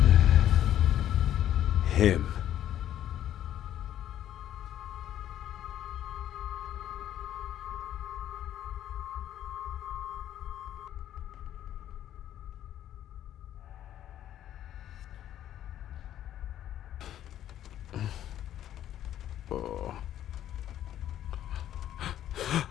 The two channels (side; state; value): right; quieter; 11.5 dB